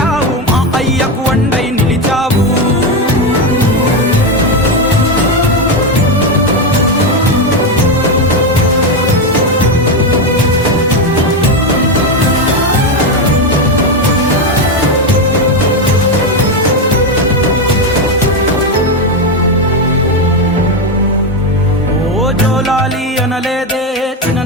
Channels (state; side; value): normal; both; correlation 0.10